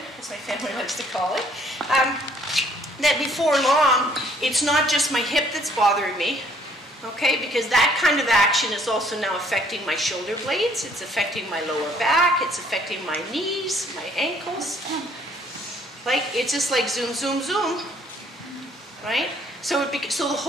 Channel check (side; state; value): both; normal; correlation 0.62